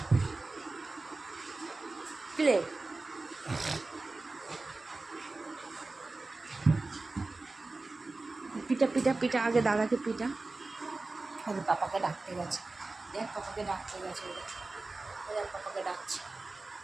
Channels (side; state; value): left; quieter; 3.4 dB